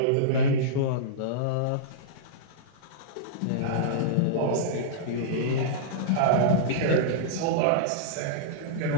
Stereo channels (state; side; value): different; both; correlation -0.03